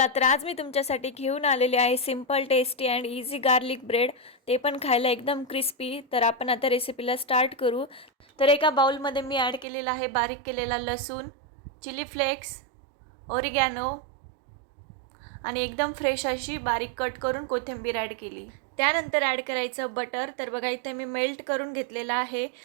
तर आज मी तुमच्यासाठी घेऊन आलेले आहे simple tasty and easy garlic bread, ते पण खायला एकदम क्रिस्पी। तर आपण आता रेसिपीला स्टार्ट करू। तर एका बाउलमध्ये मी ॲड केलेला आहे बारीक केलेला लसूण, चिली फ्लेक्स, ओरिगॅनो आणि एकदम फ्रेश अशी बारीक कट करून कोथिंबीर ॲड केली। त्यानंतर ॲड करायचं बटर। तर बघा इथे मी मेल्ट करून घेतलेला आहे।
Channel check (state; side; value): drops out; left; at 9.7 s